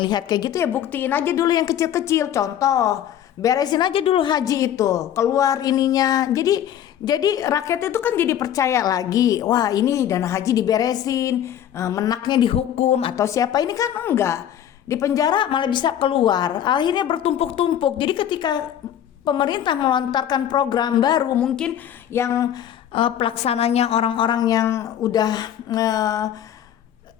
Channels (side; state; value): right; quieter; 10.4 dB